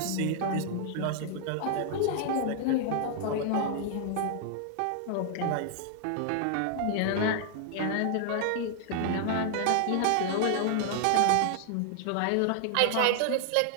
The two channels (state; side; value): different; both; correlation 0.00